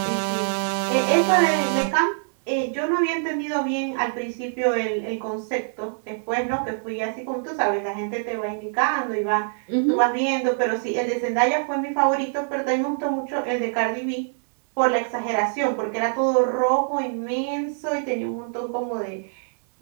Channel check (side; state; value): left; silent; digital silence